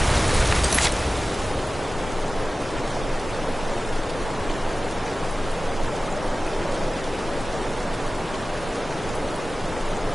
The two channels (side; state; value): both; normal; correlation 0.96